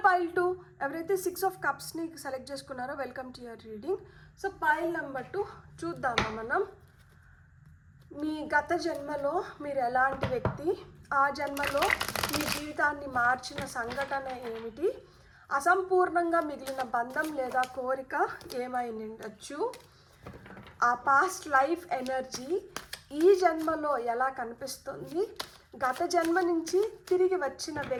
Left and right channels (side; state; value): both; identical; correlation 1.00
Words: pile 2, ఎవరైతే 6 of Cupsని సెలెక్ట్ చేసుకున్నారో welcome to your reading. So pile number 2 చూద్దామా మనం. మీ గత జన్మలో మీరు ఎలాంటి వ్యక్తి, ఆ జన్మలో మీ జీవితాన్ని మార్చిన సంఘటన ఏమిటి, అసంపూర్ణంగా మిగిలిన బంధం లేదా కోరిక ఏమై ఉండొచ్చు, ఆ పాస్ట్ లైఫ్ ఎనర్జీ ఈ జన్మలో ఎలా కనిపిస్తుంది, గత జన్మ నుంచి తిరిగి వచ్చిన